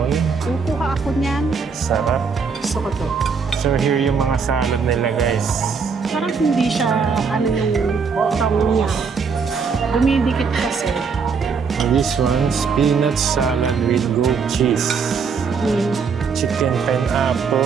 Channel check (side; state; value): left; quieter; 5.5 dB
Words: Kukuha ako niyan. Sarap. Gusto ko to. So here yung mga salad nila guys. Parang hindi siya ano yung tong niya. Dumidikit kasi. This one, peanut salad with goat cheese. Chicken